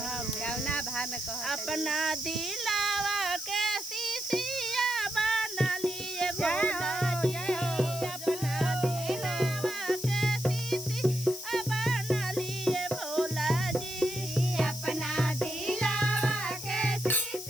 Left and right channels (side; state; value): left; noise; hiss, 10 dB below the sound